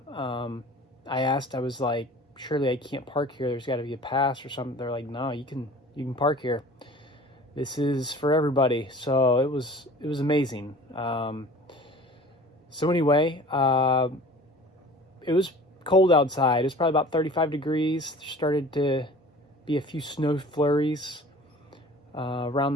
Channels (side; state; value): both; normal; correlation 0.44